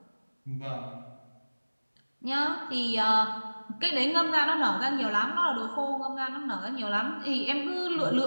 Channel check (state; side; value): inverted; both; correlation -1.00